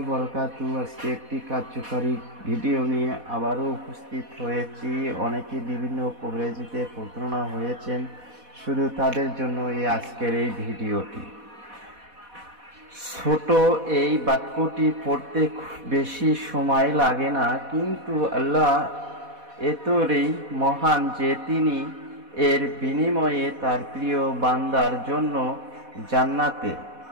বরকাতু। আজকে একটি কার্যকারী ভিডিও নিয়ে আবারও উপস্থিত হয়েছি। অনেকে বিভিন্ন কভারেজে প্রতারণা হয়েছেন, শুধু তাদের জন্য আজকের এই ভিডিওটি। ছোট এই বাক্যটি পড়তে বেশি সময় লাগে না, কিন্তু আল্লাহ এতই মহান যে তিনি এর বিনিময়ে তার প্রিয় বান্দার জন্য জান্নাতে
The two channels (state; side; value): late; left; 4.1 ms